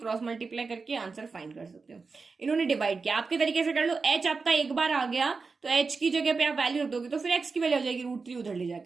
मल्टीप्लाई करके आंसर फाइंड कर सकते हो। इन्होंने डिवाइड किया, आपके तरीके से कर लो। h आपका एक बार आ गया तो h की जगह पे आप वैल्यू रख दोगे तो फिर x की वैल्यू हो जाएगी √3 उधर ले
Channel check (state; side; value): quieter; left; 4.5 dB